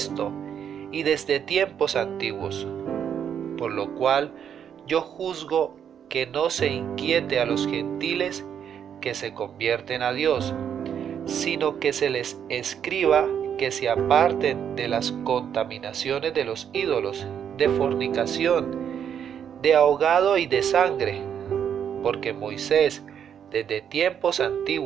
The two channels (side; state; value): left; quieter; 8.5 dB